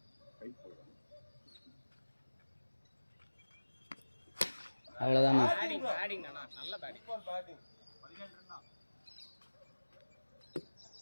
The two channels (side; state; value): both; inverted; correlation -1.00